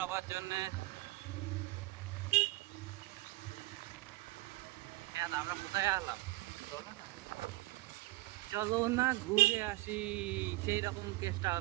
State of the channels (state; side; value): quieter; left; 20.1 dB